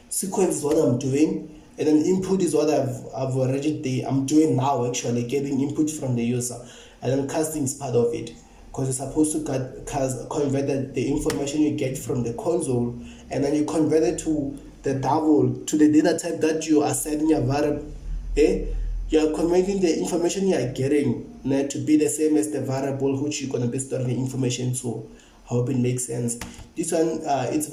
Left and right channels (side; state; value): both; identical; correlation 1.00